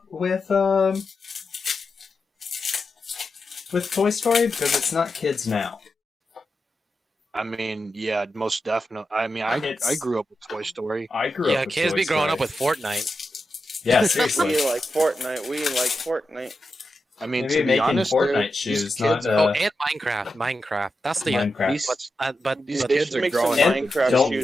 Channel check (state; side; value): normal; both; correlation 0.89